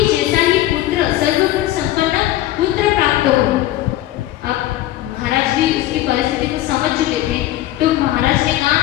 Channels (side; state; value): right; quieter; 14.7 dB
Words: जैसा ही पुत्र, सर्वगुण संपन्न पुत्र प्राप्त हो। अब महाराज भी उसकी परिस्थिति को समझ चुके थे, तो महाराज ने कहा,